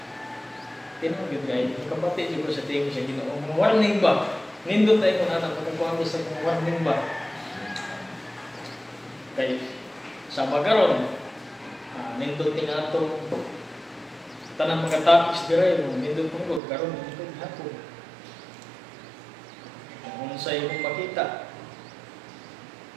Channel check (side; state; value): left; drops out; at 16.6 s